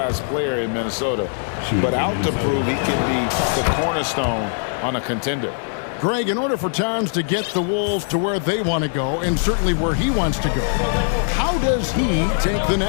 player in Minnesota, but out to prove he can be the cornerstone on a contender. Greg, in order for Towns to get the Wolves to where they want to go, and certainly where he wants to go, how does he take the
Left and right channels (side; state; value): right; silent; 58 dB below the other